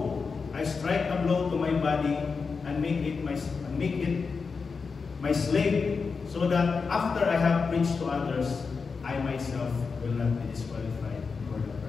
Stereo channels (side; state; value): right; quieter; 5.0 dB